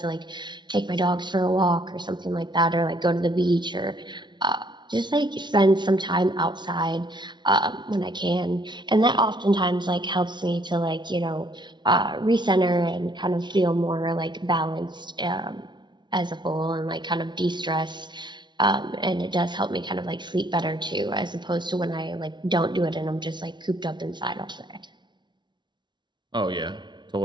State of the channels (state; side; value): late; left; 0.22 ms